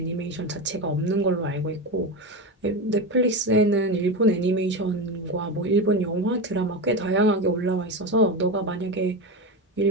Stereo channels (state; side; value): normal; both; correlation 0.19